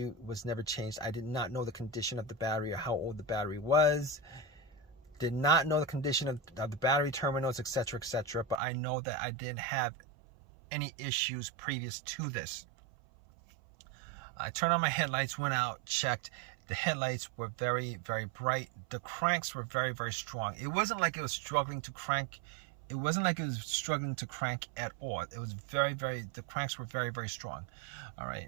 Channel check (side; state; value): left; drops out; at 8.6 s